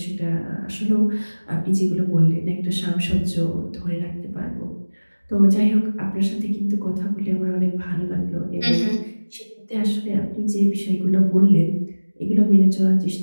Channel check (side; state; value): both; inverted; correlation -1.00